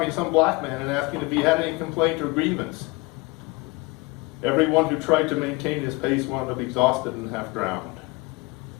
some black man and asking if he had any complaint or grievance. Everyone who tried to maintain his pace wound up exhausted and half drowned.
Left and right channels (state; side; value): quieter; right; 24.8 dB